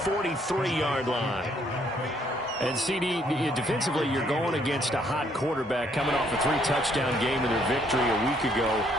line. And CD, defensively, you're going against a hot quarterback coming off a 3-touchdown game in their victory a week ago.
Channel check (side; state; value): both; normal; correlation 0.68